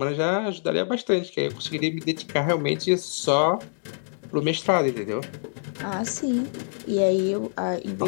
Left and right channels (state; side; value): silent; right; digital silence